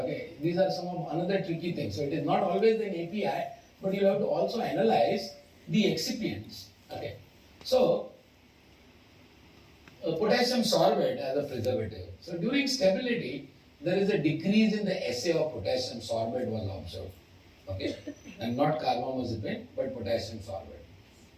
these are some of another tricky things. So it is not always an API, but you have to also analyze the excipients. Okay, so potassium sorbate as a preservative. So during stability, there is a decrease in the assay of potassium sorbate was observed. Okay, and not carbamazepine, but potassium sorbate.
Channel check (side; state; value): both; identical; correlation 1.00